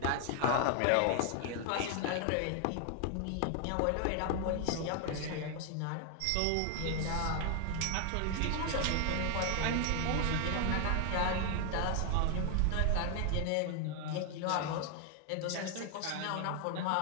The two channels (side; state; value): both; different; correlation 0.00